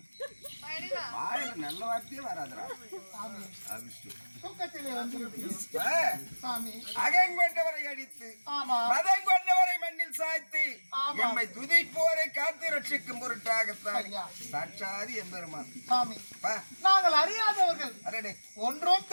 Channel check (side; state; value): both; inverted; correlation -1.00